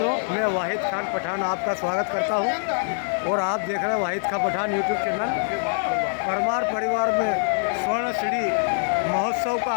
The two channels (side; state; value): right; silent; digital silence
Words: मैं वाहिद खान पठान आपका स्वागत करता हूं और आप देख रहे हैं वाहिद खान पठान यूट्यूब चैनल। परमार परिवार में स्वर्ण सीढ़ी महोत्सव का